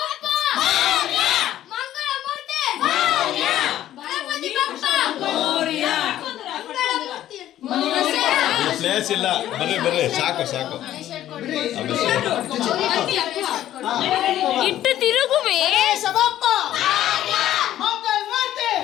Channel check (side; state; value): right; quieter; 12.6 dB